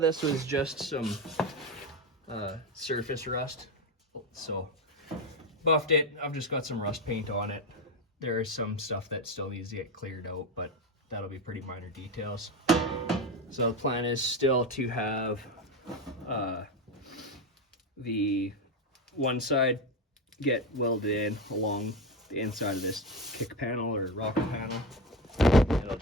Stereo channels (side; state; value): both; normal; correlation 0.16